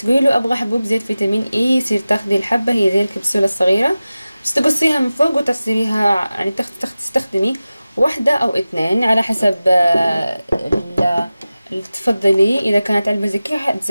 له ابغى حبوب زيت فيتامين اي، يصير تاخذي الحبة هي زي الكبسولة الصغيرة، بس تقصيها من فوق وتصيريها يعني تستخدمي واحدة او اثنين على حسب اللي تفضلي. اذا كانت علبة زي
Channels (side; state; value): both; inverted; correlation -0.96